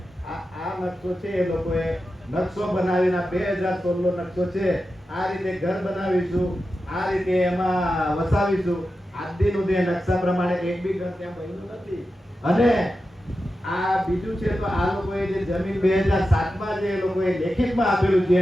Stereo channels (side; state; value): both; normal; correlation 0.91